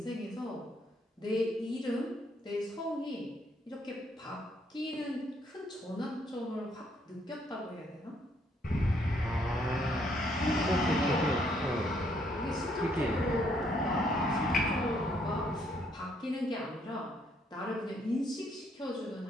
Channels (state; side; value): normal; both; correlation 0.70